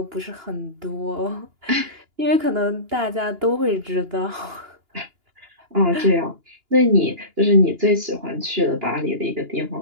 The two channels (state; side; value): late; left; 2.9 ms